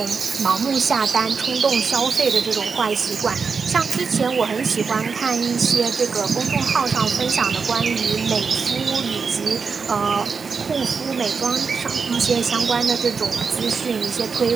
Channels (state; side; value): quieter; left; 5.4 dB